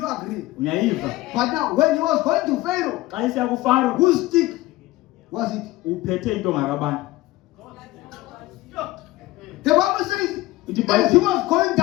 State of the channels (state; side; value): quieter; right; 18.1 dB